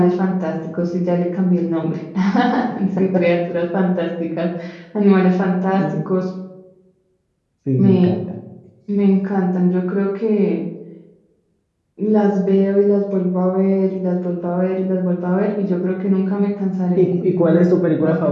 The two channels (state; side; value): identical; both; correlation 1.00